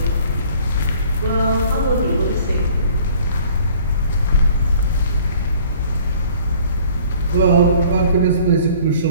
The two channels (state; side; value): inverted; both; correlation -0.53